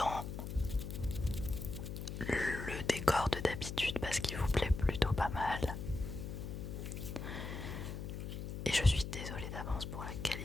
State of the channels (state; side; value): noise; left; hum, 6 dB below the sound